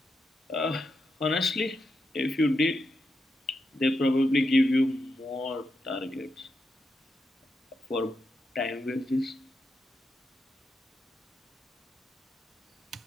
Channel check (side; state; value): both; normal; correlation 0.85